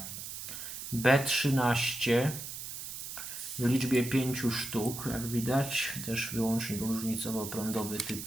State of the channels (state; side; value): noise; right; hiss, 8 dB below the sound